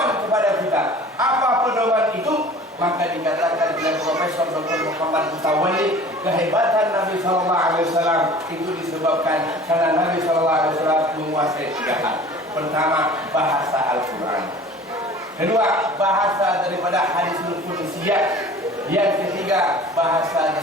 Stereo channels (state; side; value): normal; both; correlation 0.44